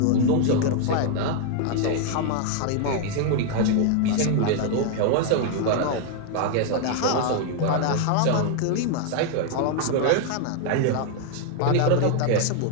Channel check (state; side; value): different; both; correlation 0.00